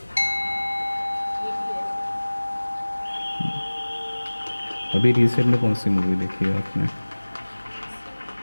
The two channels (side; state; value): both; inverted; correlation -1.00